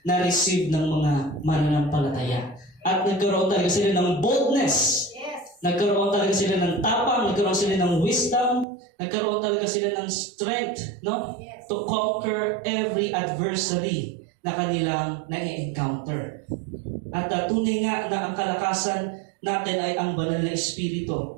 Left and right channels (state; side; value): drops out; left; at 8.7 s